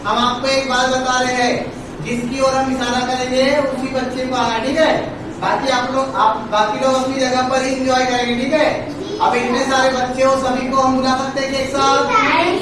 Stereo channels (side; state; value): both; identical; correlation 1.00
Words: हम आपको एक बात बता रहे हैं, जिसकी ओर हम इशारा करेंगे उसी बच्चे को आना। ठीक है। बाकी बाकी लोग अपनी जगह पर ही एंजॉय करेंगे। ठीक है। अब इतने सारे बच्चे हो, सभी को हम बुला सकते हैं एक साथ,